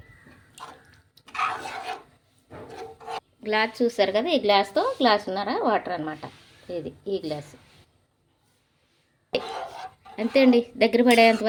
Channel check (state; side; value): identical; both; correlation 1.00